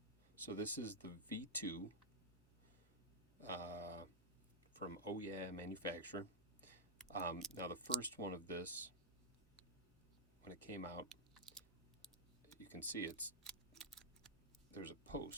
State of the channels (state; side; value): normal; both; correlation -0.04